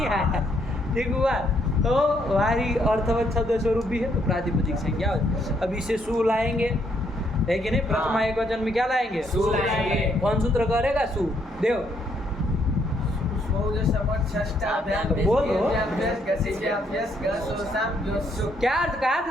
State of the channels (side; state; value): both; normal; correlation 0.72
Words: आया? ठीक हुआ? तो वारी अर्थवत शब्द स्वरूप भी है, तो प्रातिपदिक संज्ञा। अब इसे सु लाएंगे, है कि नहीं? प्रथमा एक वचन में क्या लाएंगे? सु लाएंगे। कौन सूत्र करेगा? सु देव। बोलो क्या अर्थ कहा